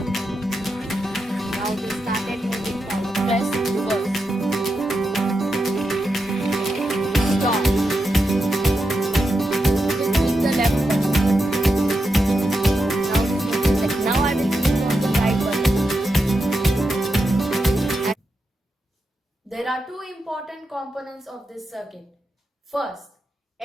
Now it is started moving forward. Press reverse. Stop. Click the left button. Now I will click on the right button. There are two important components of this circuit. First,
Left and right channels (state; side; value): normal; both; correlation 0.87